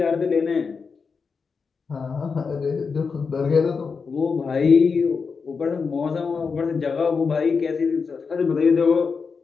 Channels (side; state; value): right; quieter; 5.2 dB